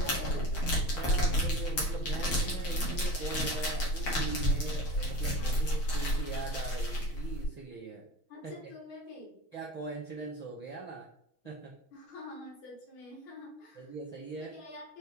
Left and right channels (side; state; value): right; late; 6.2 ms